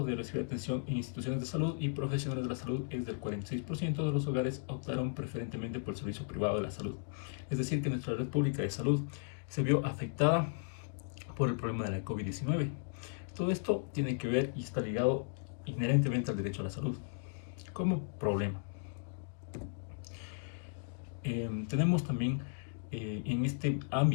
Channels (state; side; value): silent; right; digital silence